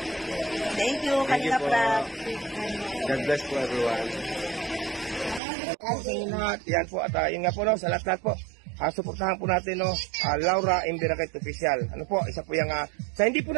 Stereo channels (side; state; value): left; drops out; at 5.4 s